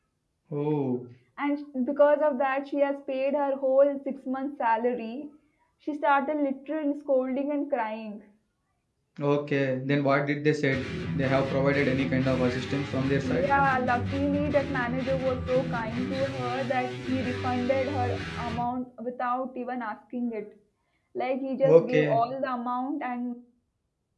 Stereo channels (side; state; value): both; identical; correlation 1.00